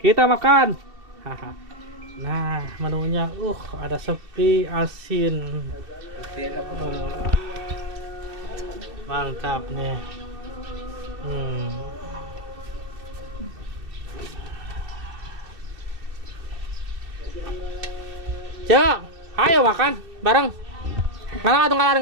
makan. Nah menunya, ada sepi asin. Mantap nih. Cok, ayo makan bareng.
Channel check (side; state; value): left; late; 2.7 ms